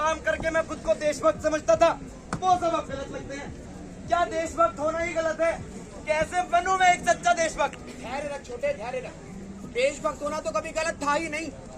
करके मैं खुद को देशभक्त समझता था, वो सब अब गलत लगते हैं। क्या देशभक्त होना ही गलत है? कैसे बनूं मैं एक सच्चा देशभक्त? धैर्य रख छोटे, धैर्य रख। देशभक्त होना तो कभी गलत था ही नहीं,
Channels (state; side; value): identical; both; correlation 1.00